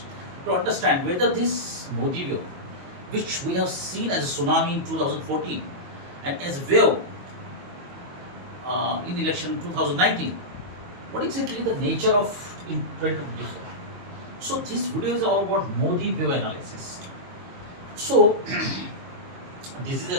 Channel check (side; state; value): left; late; 22 ms